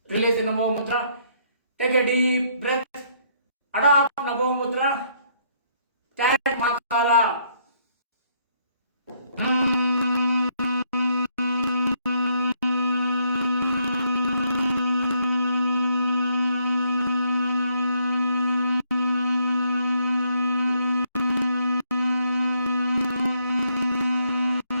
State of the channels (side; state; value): both; inverted; correlation -0.70